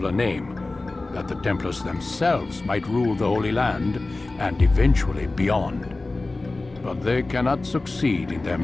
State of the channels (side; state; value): right; quieter; 3.2 dB